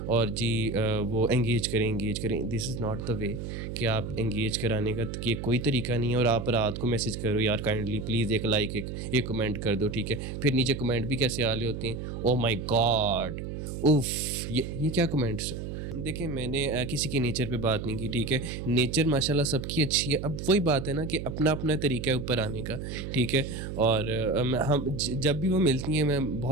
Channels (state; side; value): noise; right; hum, 6 dB below the sound